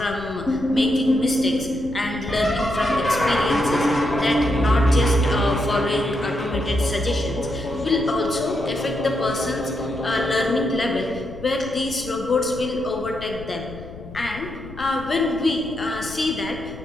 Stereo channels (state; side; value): noise; left; rumble, 15 dB below the sound